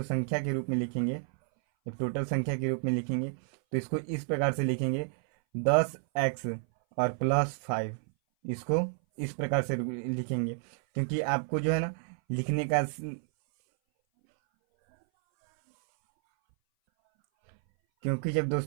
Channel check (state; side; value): silent; left; 58 dB below the other